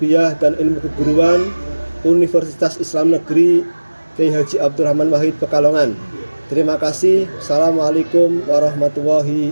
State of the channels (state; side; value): inverted; both; correlation -1.00